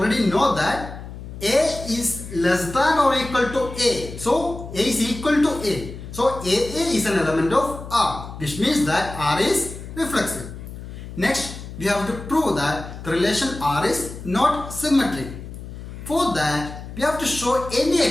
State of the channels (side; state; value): left; noise; hum, 12 dB below the sound